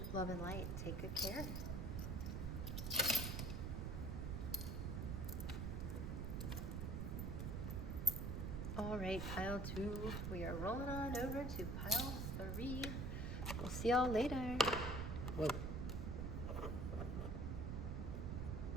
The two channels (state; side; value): noise; right; rumble, 2 dB below the sound